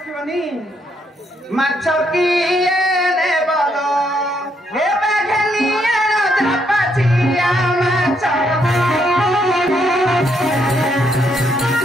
মাছ কিয়ে নেবল এবে ঘেনিয়ে যা পাচিয়া মাছ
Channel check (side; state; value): both; normal; correlation 0.74